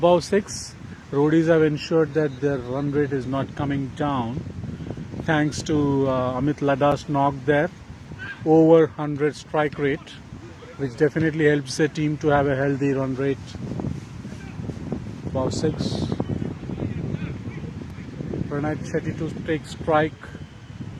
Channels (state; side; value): identical; both; correlation 1.00